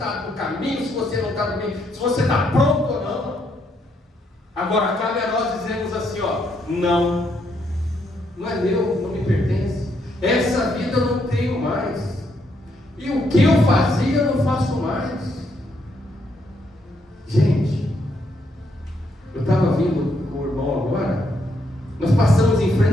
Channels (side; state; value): both; normal; correlation 0.75